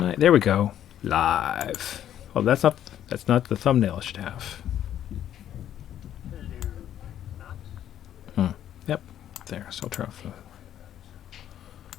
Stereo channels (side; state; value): right; quieter; 10.9 dB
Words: I? There we go. Live. Oh, that's not the thumbnail I should have. Yep. There. So I'll turn off the.